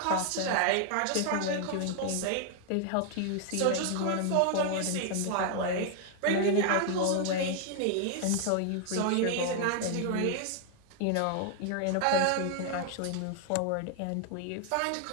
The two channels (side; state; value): both; different; correlation 0.00